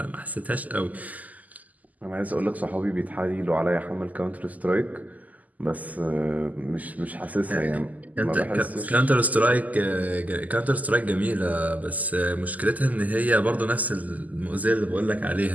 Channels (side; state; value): left; late; 0.078 ms